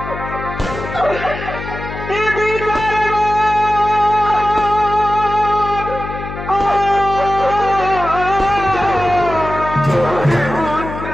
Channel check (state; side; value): noise; left; hum, 9 dB below the sound